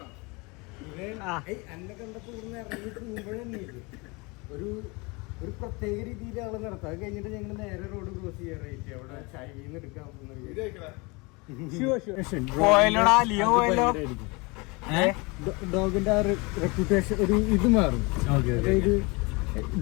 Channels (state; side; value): quieter; right; 27.3 dB